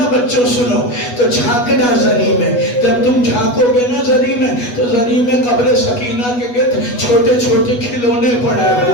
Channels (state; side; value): late; right; 8.2 ms